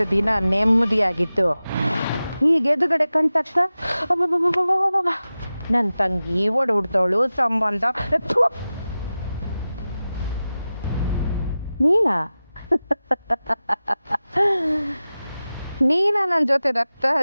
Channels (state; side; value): inverted; both; correlation -0.94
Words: ದಿನ ನೆಮ್ಮದಿಯಾಗಿತ್ತು. ಈಗ ಎದುರುಗಡೆ ಕಂಡ ತಕ್ಷಣ ನನ್ನ ತಂಗಿ ಹೊಡ್ದವಳು ಸಂಬಂಧ. ನೀನಾ ನನ್ನ ಜೊತೆ ರಕ್ತ